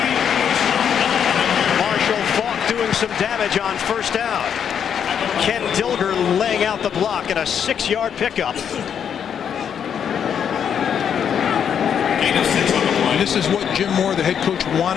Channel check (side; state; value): right; quieter; 8.1 dB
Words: Marshall Falk doing some damage on first down. Ken Dilger laying out the block at a 6-yard pickup. This is what Jim Moore, the head coach,